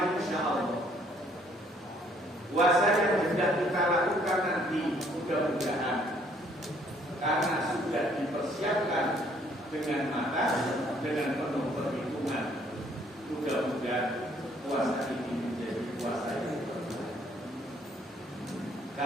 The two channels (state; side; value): normal; both; correlation 0.64